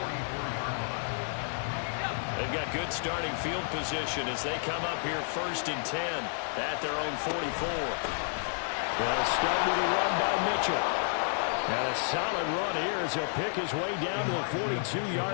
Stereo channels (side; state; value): right; silent; 56 dB below the other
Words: They've got good starting field position as they come up here 1st and 10 at their own 44. They'll start with a run by Mitchell. And a solid run here as he'll pick his way down to the